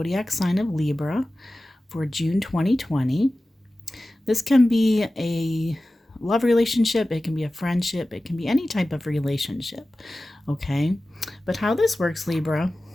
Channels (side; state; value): both; normal; correlation 0.96